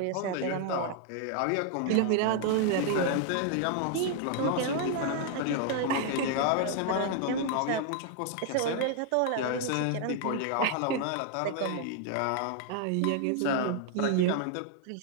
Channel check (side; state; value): both; different; correlation 0.00